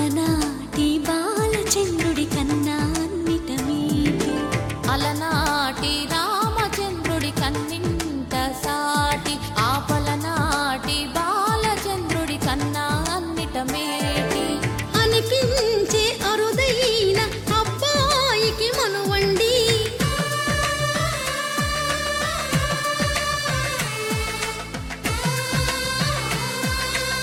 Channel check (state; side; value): identical; both; correlation 1.00